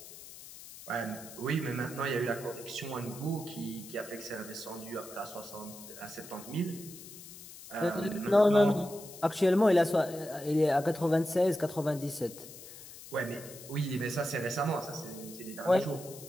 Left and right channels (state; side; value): noise; left; hiss, 15 dB below the sound